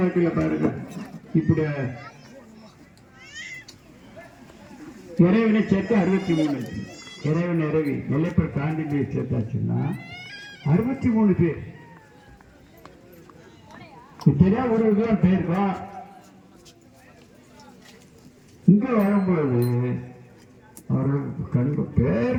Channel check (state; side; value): identical; both; correlation 1.00